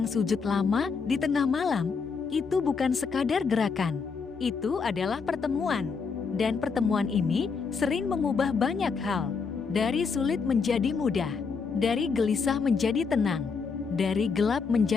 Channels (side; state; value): right; quieter; 5.3 dB